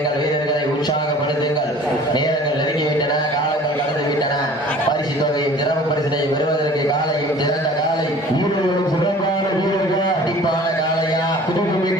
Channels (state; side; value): normal; both; correlation 0.47